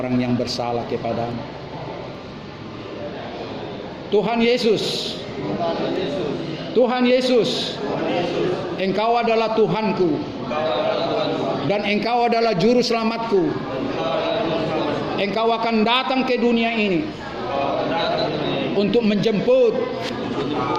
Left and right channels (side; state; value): both; identical; correlation 1.00